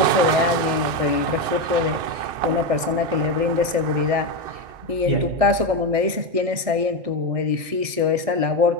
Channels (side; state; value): left; late; 1.6 ms